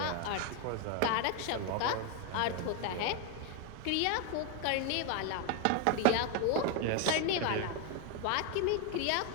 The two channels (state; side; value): different; both; correlation 0.01